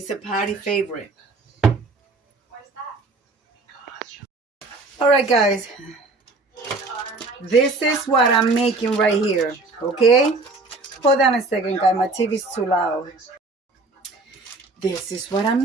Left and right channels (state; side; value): quieter; left; 3.4 dB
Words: a party favorite. All right, guys, this is what I'm making right here. Okay, hold on a second, guys. My TV's too loud. This is what I'm